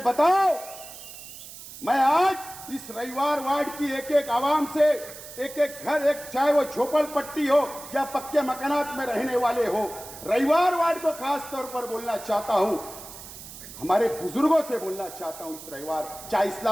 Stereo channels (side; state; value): right; noise; hiss, 14 dB below the sound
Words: बताओ। मैं आज इस रविवार वार्ड की एक एक आवाम से, एक एक घर, एक चाहे वो झोपड़पट्टी हो या पक्के मकानात में रहने वाले हो, रविवार वार्ड को खास तौर पर बोलना चाहता हूं, हमारे बुजुर्गों से बोलना चाहता हूं। इस रविवार चाहे